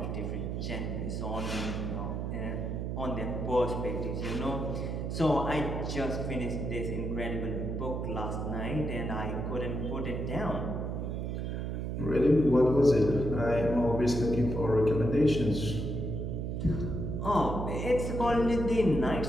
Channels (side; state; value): right; noise; hum, 3 dB below the sound